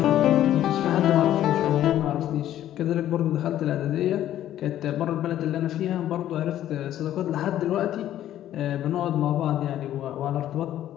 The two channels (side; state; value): right; quieter; 12.2 dB